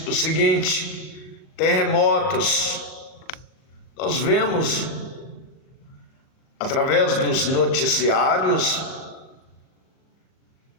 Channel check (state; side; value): late; right; 39 ms